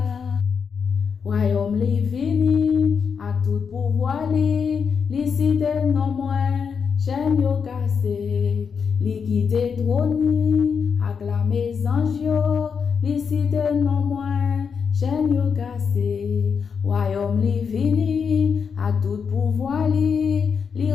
Royaume li vini, a tout pouvoir li cité non moins, chaîne yo cassé, li quitte trône, acclamé ange yo, li cité non moins, chaîne yo cassé. Royaume li vini, a tout pouvoir li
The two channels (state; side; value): quieter; right; 6.3 dB